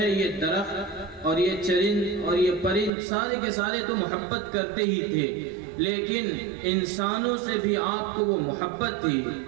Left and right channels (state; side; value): drops out; left; at 2.9 s